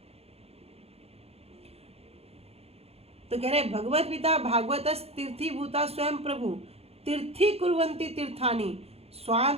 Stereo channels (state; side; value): late; left; 0.29 ms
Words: तो कह रहे भगवत पिता भागवत तीर्थी भूता स्वयं प्रभु तीर्थी कुर्वंती तीर्थानी